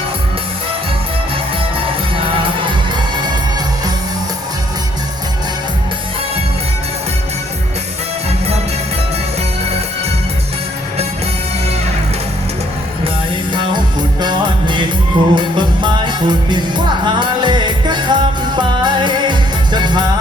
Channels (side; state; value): both; normal; correlation 0.66